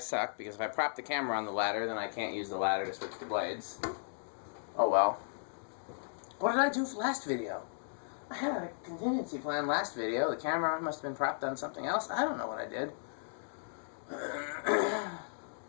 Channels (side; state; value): right; silent; digital silence